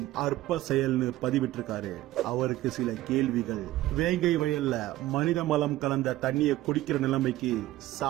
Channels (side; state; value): left; quieter; 15.8 dB